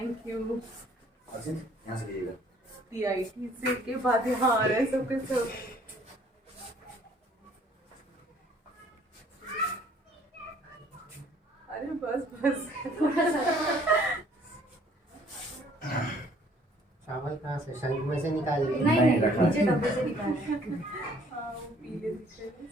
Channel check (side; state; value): both; normal; correlation 0.59